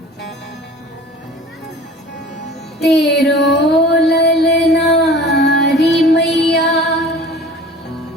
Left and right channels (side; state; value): both; normal; correlation 0.43